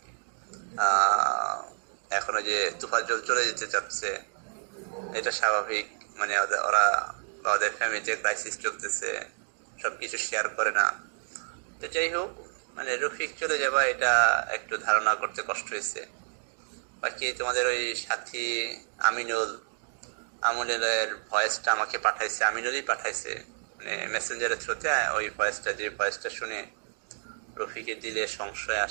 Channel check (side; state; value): left; silent; 58 dB below the other